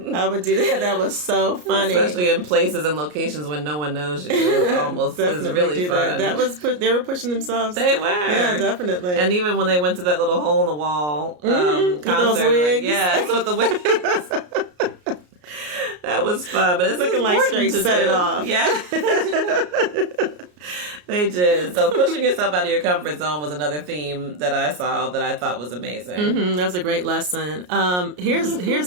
I would do that. That was so funny. Especially in places and locations when no one knows you. It's really fun. That was they were pushing themselves. They were. Yeah, definitely. And even when they went to that little hole in the wall concert. With those wigs. Yes, with the wigs. That was fun, but it's looking like straight set it off. Yeah. They did. So pushing yourself out of your comfort zone was another theme that I saw that I thought was amazing. That was a great lesson. Here's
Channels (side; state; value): left; late; 33 ms